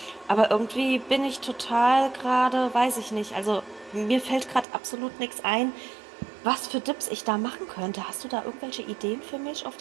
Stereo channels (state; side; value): drops out; left; at 4.7 s